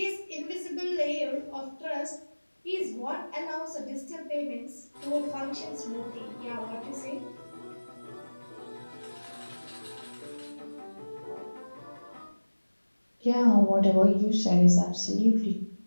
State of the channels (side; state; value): both; inverted; correlation -1.00